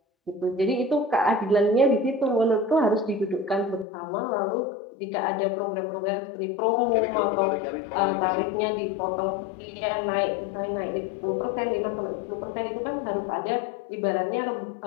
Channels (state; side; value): drops out; right; at 3.9 s